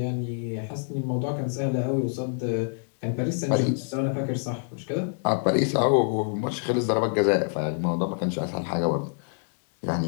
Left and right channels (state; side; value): silent; right; digital silence